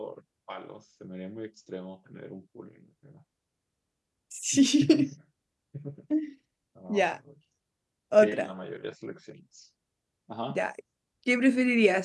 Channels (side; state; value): both; identical; correlation 1.00